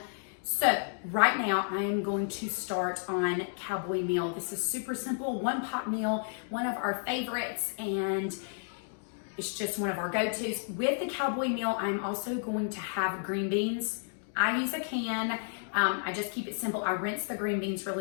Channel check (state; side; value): silent; right; digital silence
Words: So right now I am going to start on Cowboy Meal. This is super simple, one pot meal, one of our favorites, and it's just one of our go-tos. With the Cowboy Meal, I'm also going to have green beans. I use a can. I just keep it simple. I rinse the green beans